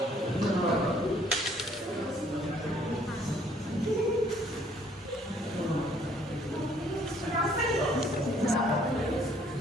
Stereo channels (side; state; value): both; normal; correlation 0.62